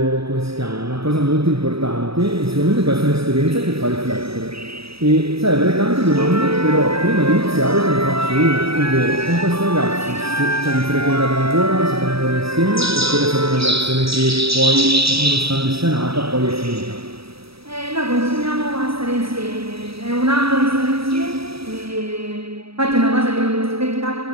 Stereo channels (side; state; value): left; late; 0.77 ms